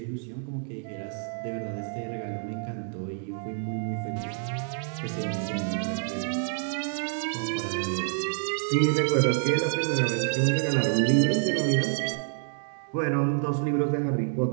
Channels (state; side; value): silent; left; digital silence